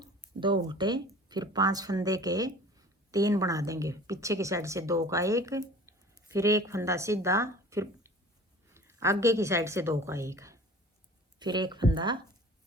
2 उल्टे, फिर 5 फंदे के 3 बना देंगे, पीछे की साइड से 2 का 1, फिर एक फंदा सीधा, फिर आगे की साइड से 2 का 1, फिर एक फंदा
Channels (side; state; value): both; normal; correlation 0.44